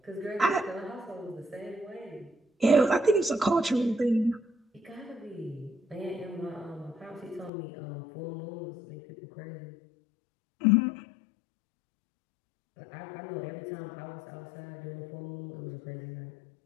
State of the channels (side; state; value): right; drops out; at 7.5 s